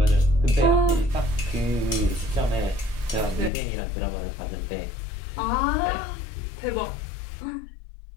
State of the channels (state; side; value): drops out; right; at 3.5 s